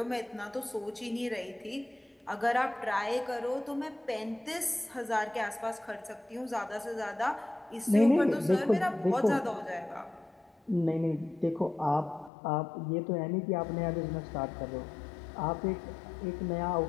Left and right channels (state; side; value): drops out; right; at 12.3 s